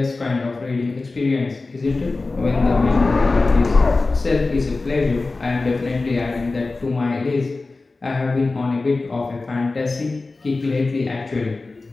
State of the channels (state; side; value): quieter; right; 3.5 dB